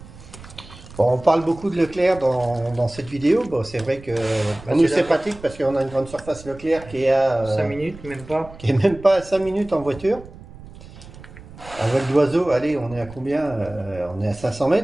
Bon, on parle beaucoup de Leclerc dans cette vidéo. Bon, c'est vrai que pour nous, c'est pratique parce qu'on a une grande surface Leclerc qui est à 5 minutes, même pas. qui est même pas à 5 minutes en voiture. À vol d'oiseau, allez, on est à combien on est à 500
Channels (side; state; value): right; noise; rumble, 18 dB below the sound